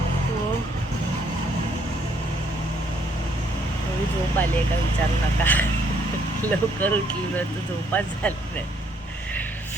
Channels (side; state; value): both; normal; correlation 0.68